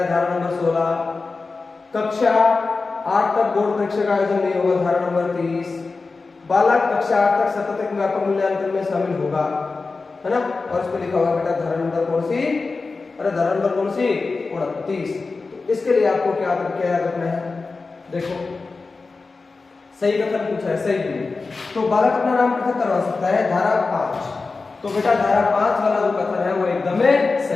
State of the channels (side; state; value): right; quieter; 4.0 dB